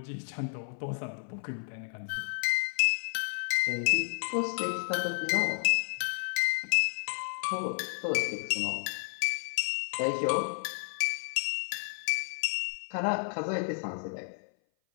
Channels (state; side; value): silent; right; 56 dB below the other